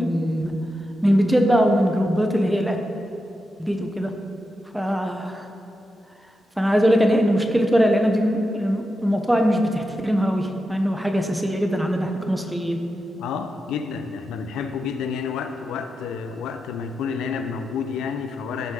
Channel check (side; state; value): both; normal; correlation 0.88